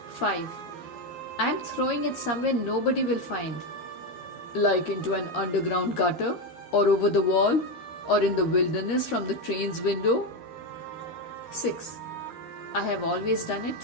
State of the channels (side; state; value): right; late; 13 ms